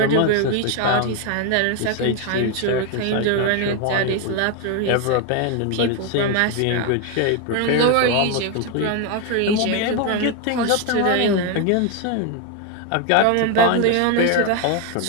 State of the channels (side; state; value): both; different; correlation 0.02